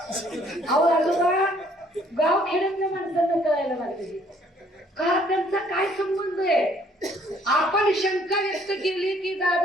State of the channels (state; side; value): normal; both; correlation 0.62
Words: अहो आजोबा, गाव खेड्यातल्या माणसांना कळायला लागले का त्यांचा काय संबंध आहे? आपण शंका व्यक्त केली की